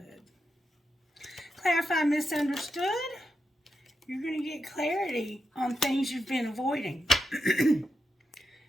Clarify misunderstood. You're going to get clarity on things you've been avoiding.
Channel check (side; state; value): both; normal; correlation 0.86